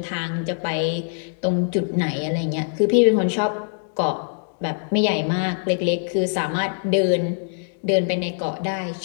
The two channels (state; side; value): silent; right; digital silence